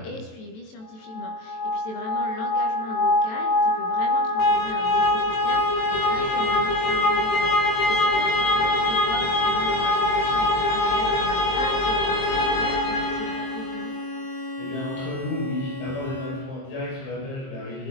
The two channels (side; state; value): right; late; 23 ms